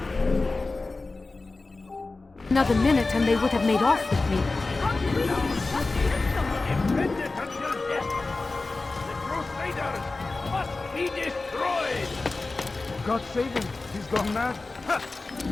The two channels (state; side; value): quieter; right; 3.5 dB